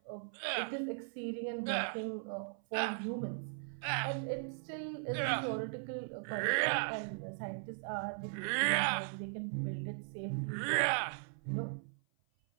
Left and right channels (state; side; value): silent; left; 52 dB below the other